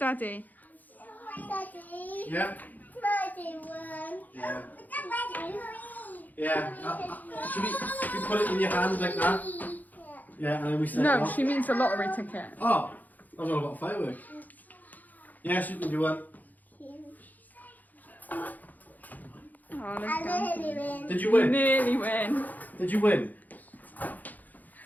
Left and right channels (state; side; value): late; right; 0.082 ms